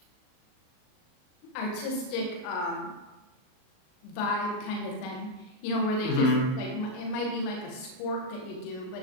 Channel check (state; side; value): late; right; 38 ms